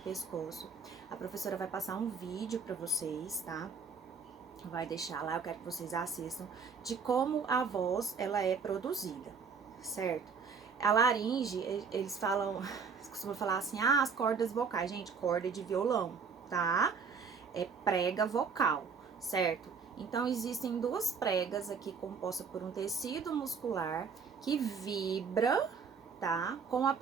A professora vai passar um vídeo para vocês, tá? Vai deixar lá, eu quero que vocês assistam, de como a voz, ela é produzida, certo? A laringe, eles falam, eles costumam falar assim, as cordas vocais. Gente, corda de violão, tá? É prega vocal, certo? Então, existem duas pregas aqui compostas por um tecido muscular que vibra, tá? Com a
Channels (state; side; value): quieter; left; 5.6 dB